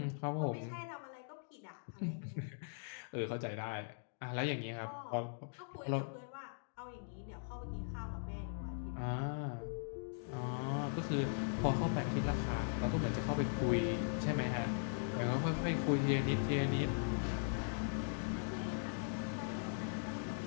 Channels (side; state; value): right; silent; digital silence